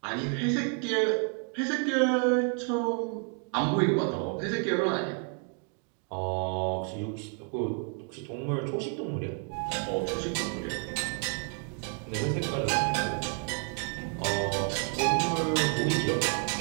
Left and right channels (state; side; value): quieter; left; 39.0 dB